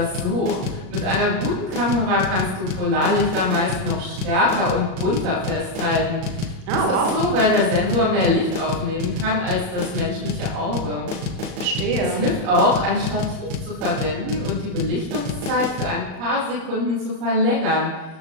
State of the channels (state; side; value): late; left; 38 ms